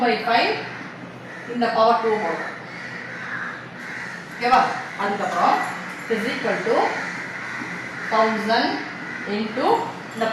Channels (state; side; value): identical; both; correlation 1.00